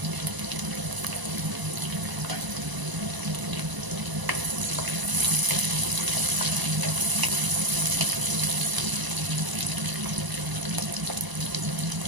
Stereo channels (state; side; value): late; left; 1.0 ms